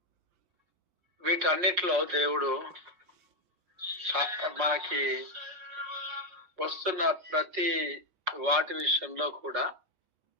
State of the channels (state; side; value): late; left; 5.5 ms